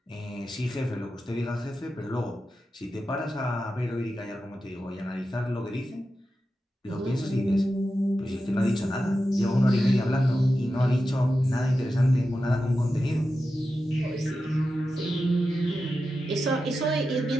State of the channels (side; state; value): both; normal; correlation 0.91